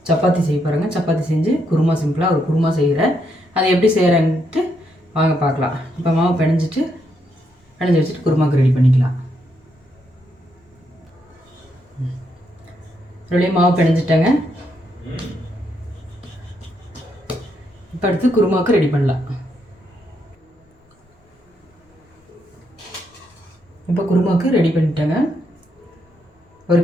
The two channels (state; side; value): normal; both; correlation 0.78